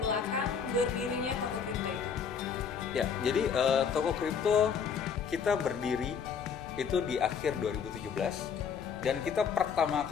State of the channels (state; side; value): quieter; right; 6.7 dB